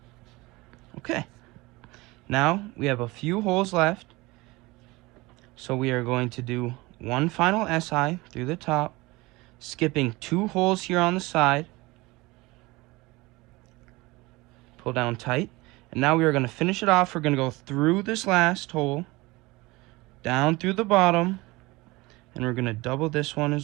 Okay, now we have a few holes left, so we are going to do one final SI through the top, skipping 2 holes here on the side. Pull down tight, and now we are going to finish it off. We're going to go through this last hole, down through the bottom, and we're going to double this one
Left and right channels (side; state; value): left; quieter; 22.0 dB